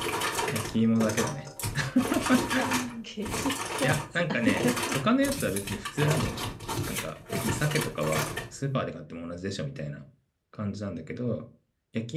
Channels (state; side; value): identical; both; correlation 1.00